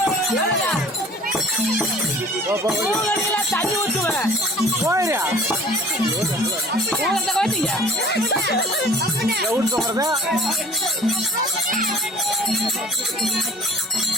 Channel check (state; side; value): normal; both; correlation 0.48